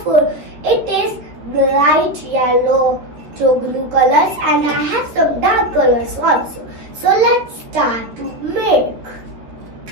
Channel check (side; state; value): left; late; 13 ms